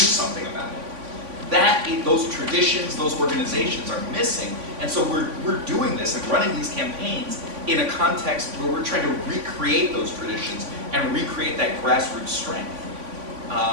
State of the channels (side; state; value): left; late; 3.5 ms